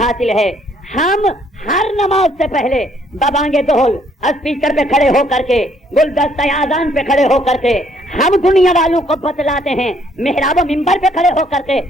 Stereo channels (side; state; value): both; normal; correlation 0.66